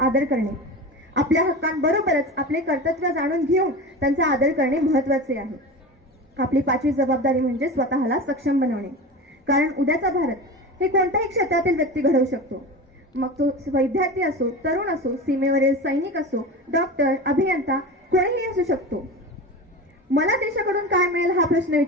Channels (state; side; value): normal; both; correlation 0.29